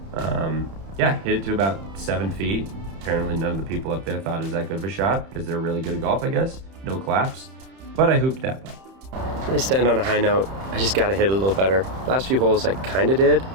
yeah, hit it to about 7 feet. Apparently none of the people up there thought it was that good of a shot because they're really good at golf, I guess. No claps, but I hooped that putt. I stand on a high note. I just got to hit a little better. Last few holes I kind of did,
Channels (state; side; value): late; left; 31 ms